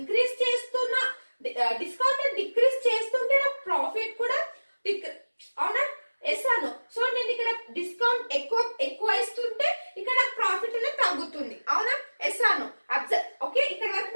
చేస్తున్నా, డిస్కౌంట్ డిక్రీజ్ చేస్తుంటే నా ప్రాఫిట్ కూడా అవునా? ఎస్ అను. సో నేను ఇక్కడ డిస్కౌంట్ ఎక్కువ ఇస్తుంటే ఇక్కడ ప్రాఫిట్ అనేది తగ్గుతుంది. అవునా? ఎస్ అను. అబ్జర్వ్. ఓకే, ఇక్కడ వరకు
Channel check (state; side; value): inverted; both; correlation -1.00